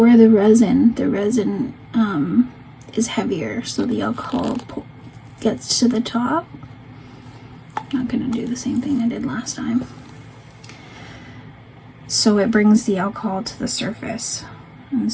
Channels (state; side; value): identical; both; correlation 1.00